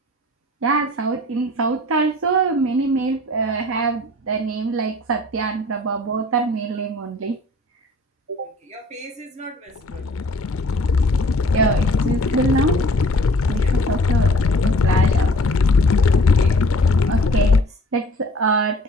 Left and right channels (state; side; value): normal; both; correlation 0.51